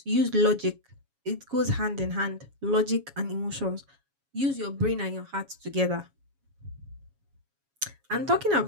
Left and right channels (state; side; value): late; left; 7.2 ms